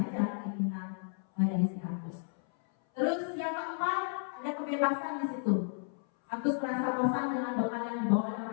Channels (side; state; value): right; silent; 56 dB below the other